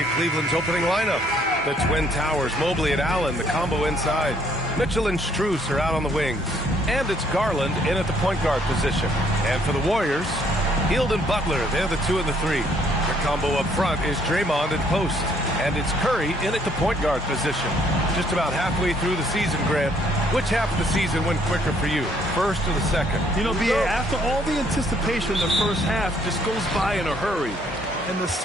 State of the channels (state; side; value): normal; both; correlation 0.65